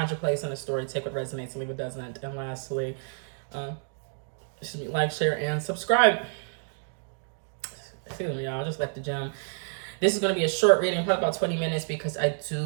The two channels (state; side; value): silent; left; digital silence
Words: your place in the story, take what resonates, leave what doesn't. And lastly, like, share, and subscribe. Excuse me, y'all, I just left the gym. This is going to be a short reading, probably about 20 minutes, because I